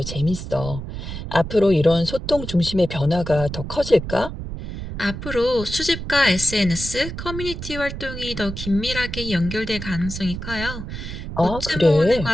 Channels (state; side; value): noise; right; rumble, 8 dB below the sound